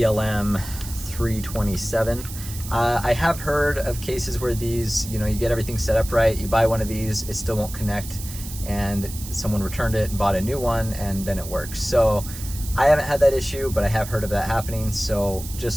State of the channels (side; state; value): right; noise; hiss, 12 dB below the sound